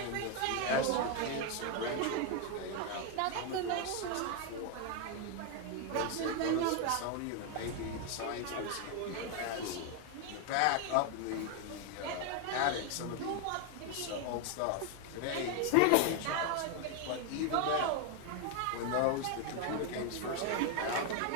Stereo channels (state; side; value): different; both; correlation 0.01